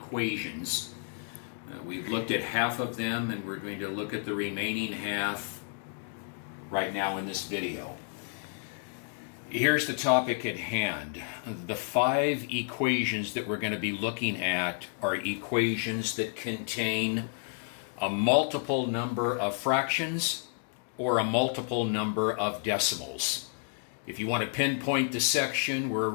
We've looked at half of them, and we're going to look at the remaining half right now in this video. Here's the topic at hand. The 5 equations that we're going to be looking at are equations that contain a multiple number of fractions or a multiple number of decimals. If you want to pinpoint the section, we're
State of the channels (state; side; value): silent; right; 57 dB below the other